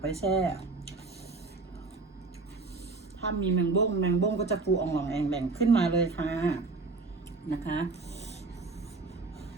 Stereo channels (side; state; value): left; quieter; 3.8 dB